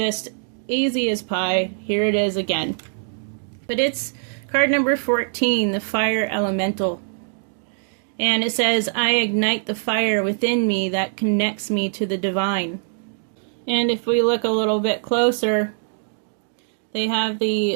easy as pie. Here it is again. But it's card number 14, the Fire Elemental. And it says, I ignite the fire within me that connects me to the divine. And if we look a little bit closer, they have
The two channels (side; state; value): left; silent; digital silence